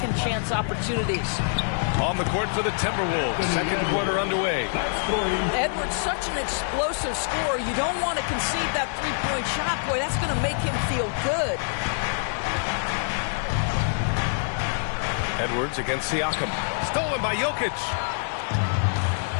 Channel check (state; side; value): silent; right; digital silence